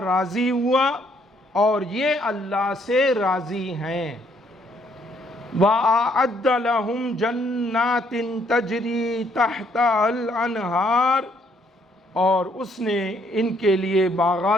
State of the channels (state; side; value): normal; both; correlation 0.68